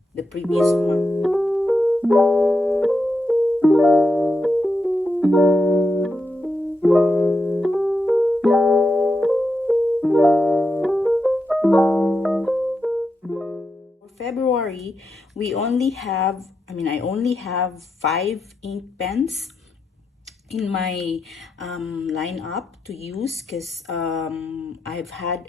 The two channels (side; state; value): both; normal; correlation 0.85